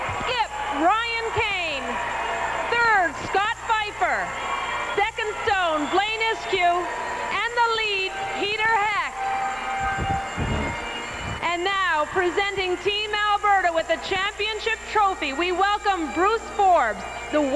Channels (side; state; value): both; identical; correlation 1.00